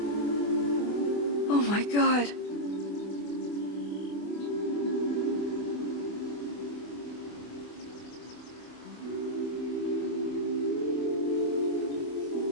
Oh my God.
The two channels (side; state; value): right; late; 24 ms